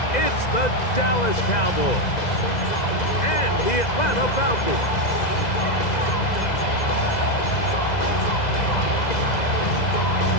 It's the Dallas Cowboys and the Atlanta Falcons.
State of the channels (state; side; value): late; right; 2.0 ms